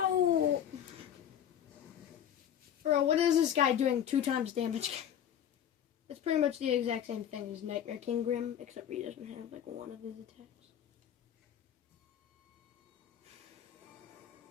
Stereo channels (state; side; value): quieter; right; 9.8 dB